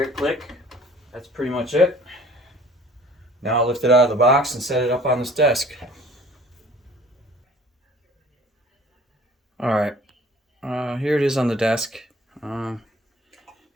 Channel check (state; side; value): normal; both; correlation 0.51